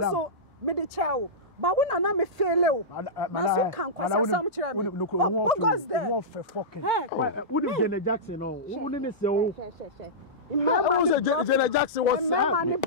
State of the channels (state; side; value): normal; both; correlation -0.15